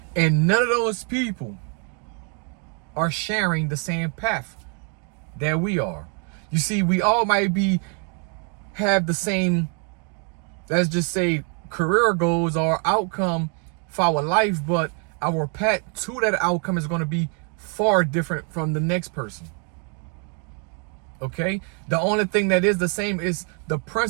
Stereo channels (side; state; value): left; quieter; 39.0 dB